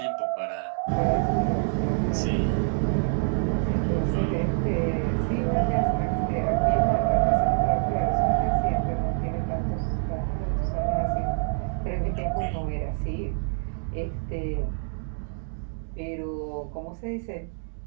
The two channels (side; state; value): left; silent; digital silence